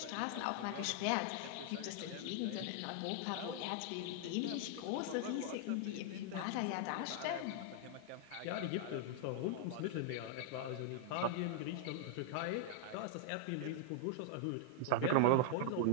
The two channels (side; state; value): both; different; correlation 0.00